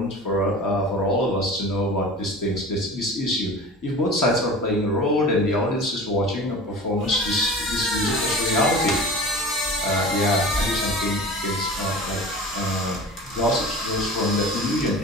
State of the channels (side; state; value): both; normal; correlation 0.37